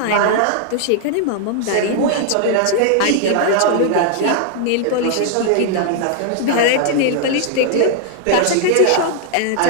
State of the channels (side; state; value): both; different; correlation 0.00